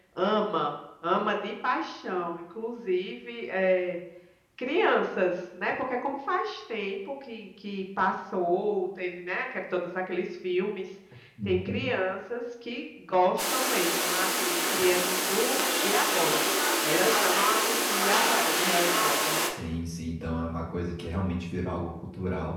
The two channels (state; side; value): identical; both; correlation 1.00